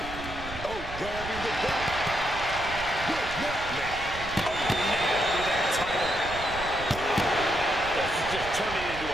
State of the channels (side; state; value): right; noise; rumble, 11 dB below the sound